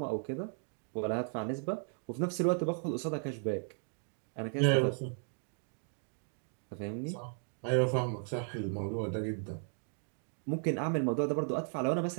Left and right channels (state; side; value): silent; left; 54 dB below the other